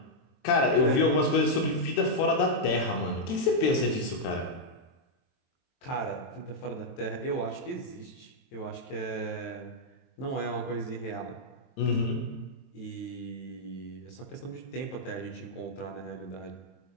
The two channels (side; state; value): right; late; 23 ms